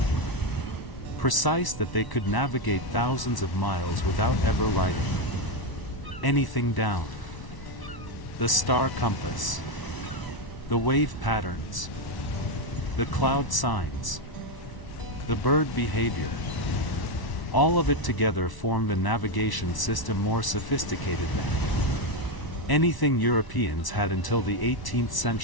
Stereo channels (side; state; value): right; late; 1.0 ms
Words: precise that they could navigate thousands of miles without ever writing anything down. The star compass. The wave patterns. The cloud signs. The bird behavior. All of it together formed a navigation system more sophisticated than anything Europeans had until the 18th